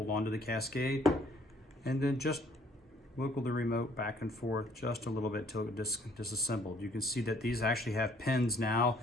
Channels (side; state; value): both; normal; correlation 0.61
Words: on to the cascade and then just wiggle the remote back and forth just a little bit till it disassembled. You can see that these actually have pins now